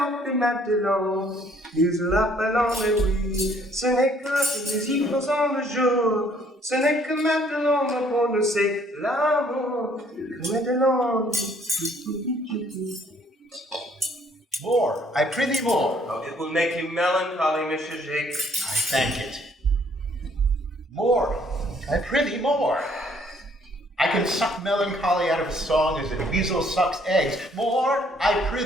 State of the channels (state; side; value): normal; both; correlation 0.63